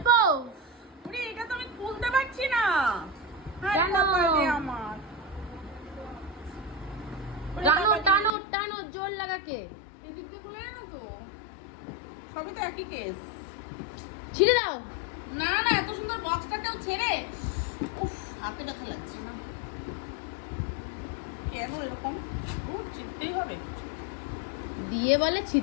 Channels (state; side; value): drops out; right; at 8.3 s